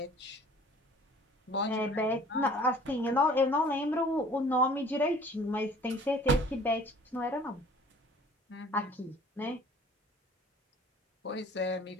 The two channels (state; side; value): normal; both; correlation 0.51